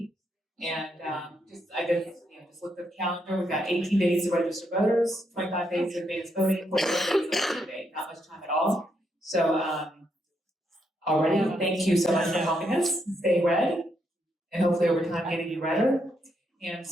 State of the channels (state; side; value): normal; both; correlation 0.78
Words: And just looked at the calendar. We've got 18 days to register voters, 25 days of advance voting, 45 days of election day. Not much time at all. So already, thank you so much for helping us stay red, and hopefully over time getting you redder. And